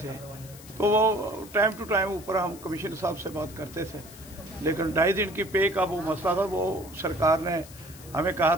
तो वो टाइम टू टाइम ऊपर हम कमिश्नर साहब से बात करते थे। लेकिन 2.5 दिन की पे का वो मसला था, वो सरकार ने हमें कहा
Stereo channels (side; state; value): left; noise; hiss, 19 dB below the sound